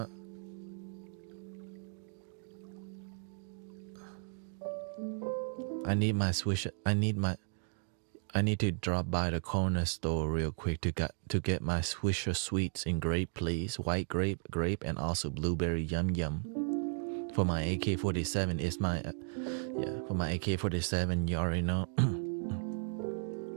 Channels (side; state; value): left; silent; digital silence